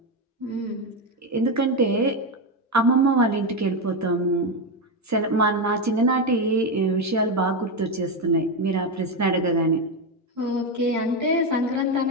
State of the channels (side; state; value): both; normal; correlation 0.10